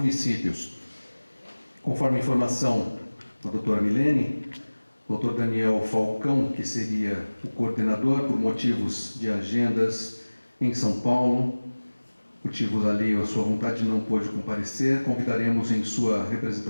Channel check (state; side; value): inverted; both; correlation -1.00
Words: Conforme a informação da doutora Milene, o doutor Daniel Falcão, que seria o coordenador por motivos de agendas em São Paulo, motivos ali, a sua vontade não pôde comparecer, convidaremos em sua